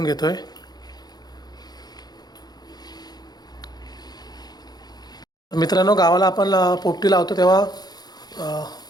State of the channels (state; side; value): late; right; 0.19 ms